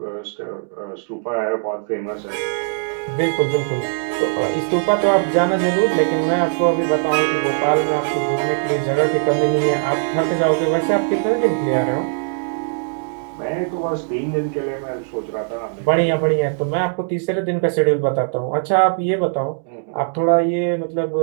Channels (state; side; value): silent; left; digital silence